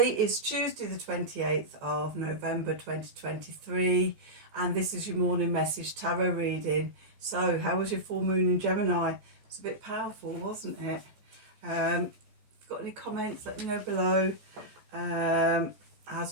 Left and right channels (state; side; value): late; left; 14 ms